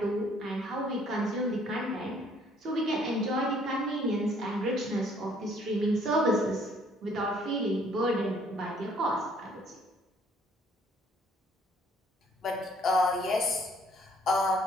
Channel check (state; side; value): normal; both; correlation 0.62